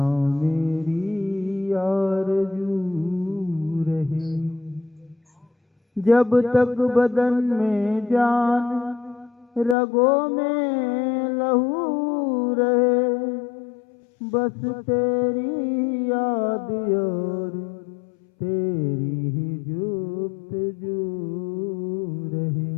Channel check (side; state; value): right; drops out; at 9.8 s